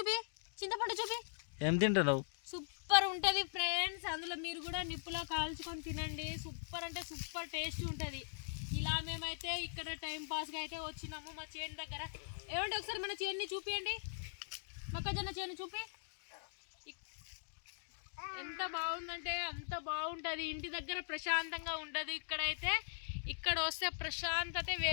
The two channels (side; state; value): right; silent; digital silence